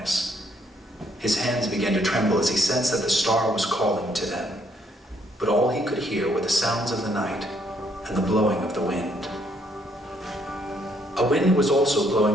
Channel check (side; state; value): both; normal; correlation 0.69